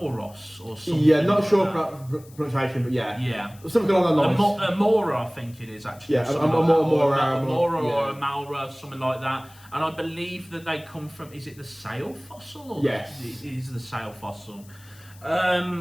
or something. Yeah, not sure about pronunciation, but yeah. Something along those lines. Amora, I think it is actually. Yeah, Amora or Amalra, something like that. And I believe that they come from, is it the sail fossil? Or yes. It is the sail fossil.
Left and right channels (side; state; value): left; noise; hiss, 25 dB below the sound